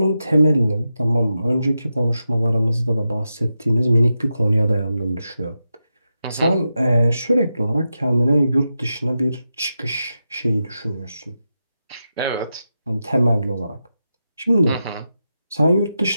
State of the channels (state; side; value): inverted; both; correlation -0.89